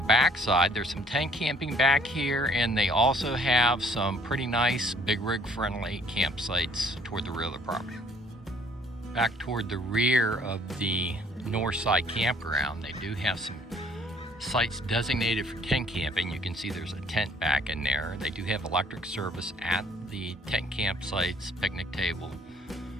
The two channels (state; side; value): normal; both; correlation 0.59